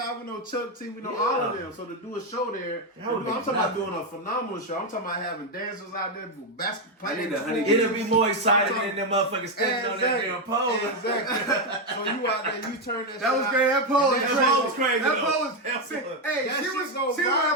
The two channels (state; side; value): normal; both; correlation 0.05